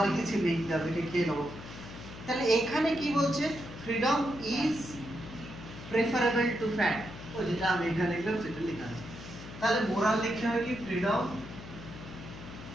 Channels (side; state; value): left; noise; hum, 13 dB below the sound